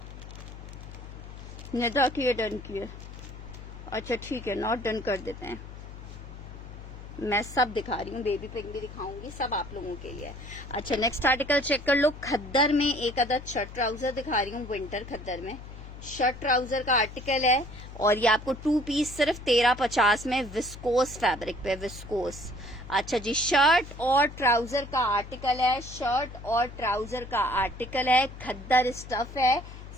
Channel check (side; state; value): left; noise; hum, 13 dB below the sound